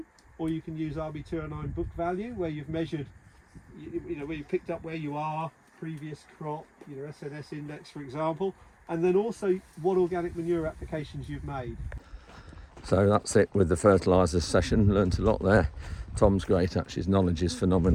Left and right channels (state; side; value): identical; both; correlation 1.00